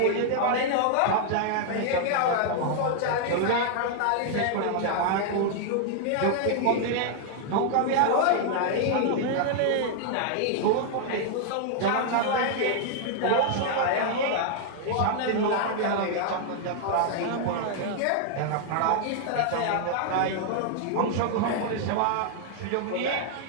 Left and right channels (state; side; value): different; both; correlation 0.00